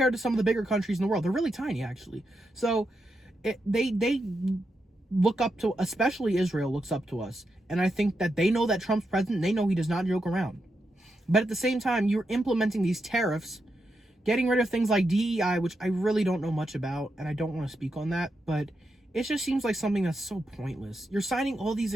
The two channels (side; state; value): both; normal; correlation 0.85